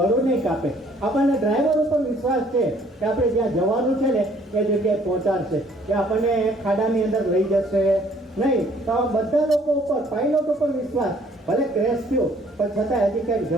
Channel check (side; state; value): both; normal; correlation 0.60